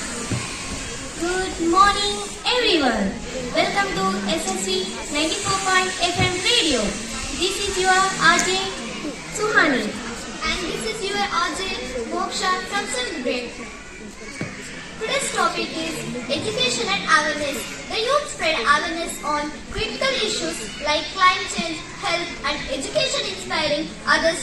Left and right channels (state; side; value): identical; both; correlation 1.00